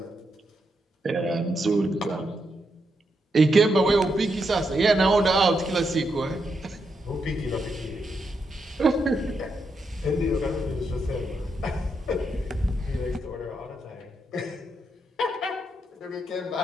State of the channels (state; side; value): normal; both; correlation 0.82